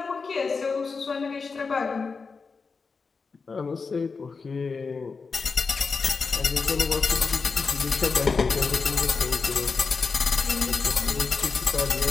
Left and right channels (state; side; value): quieter; right; 4.8 dB